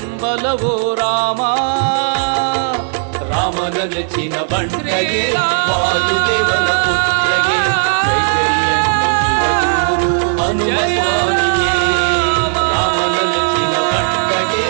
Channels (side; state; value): left; silent; digital silence